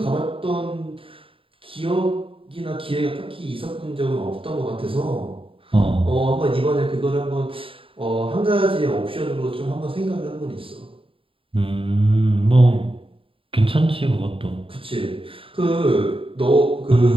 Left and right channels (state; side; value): late; left; 0.26 ms